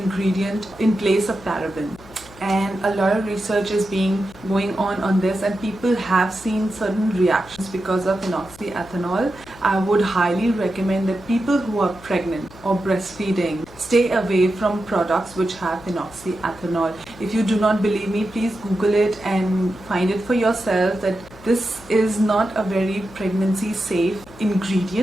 in place of paraben. and a lot of research is going on this, and people have seen certain reactions because of phenoxyethanol. I would highly recommend that people who are pregnant or breastfeeding stay away from products which have phenoxyethanol. If you do not believe me, please Google it and find it for yourself that this is not a very pregnancy safe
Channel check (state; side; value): noise; left; hum, 21 dB below the sound